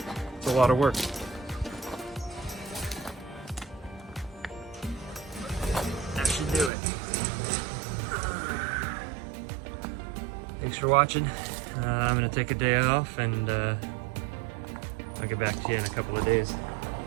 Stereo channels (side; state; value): left; drops out; at 6.7 s